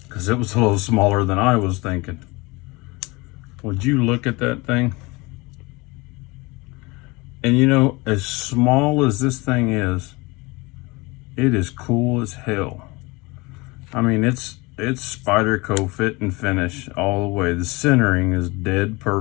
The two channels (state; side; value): quieter; right; 24.7 dB